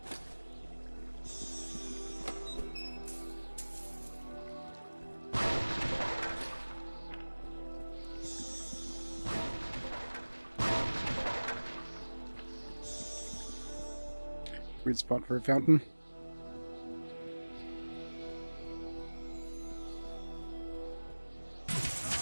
Weird spot for a fountain.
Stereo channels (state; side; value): inverted; both; correlation -1.00